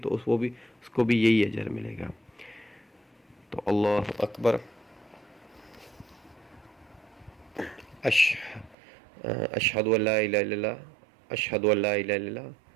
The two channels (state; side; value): drops out; left; at 8.8 s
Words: اس کو بھی یہی اجر ملے گا. تو اللہ اکبر، اشہد ان لا الہ الا اللہ، اشہد ان لا الہ الا اللہ،